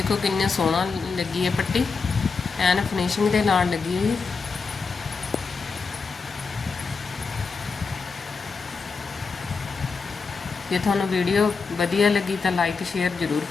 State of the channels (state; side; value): quieter; right; 4.8 dB